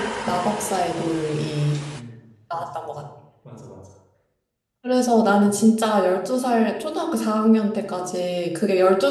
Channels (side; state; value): both; identical; correlation 1.00